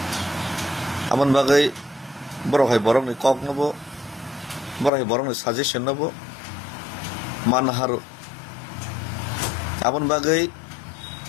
amon bagai borok hai borok ni kok nobo borok hai borok ni suggestion nobo manharu amon bagai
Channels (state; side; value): drops out; right; at 4.9 s